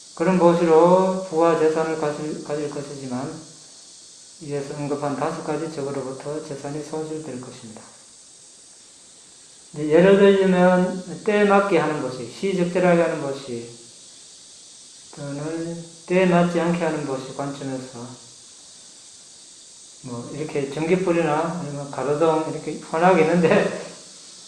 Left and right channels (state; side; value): identical; both; correlation 1.00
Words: 그런 보시로 부와 재산을 가질 것이지만 이에서 언급한 5가지 적으로부터 재산이 손실될 것입니다. 예를 들자면 때에 맞게 하는 보시, 시적절하게 하는 보시, 또는 때에 맞지 않게 하는 보시 관점에서 이렇게 전기불이나 아니면 가로등 이렇게 환하게 있는데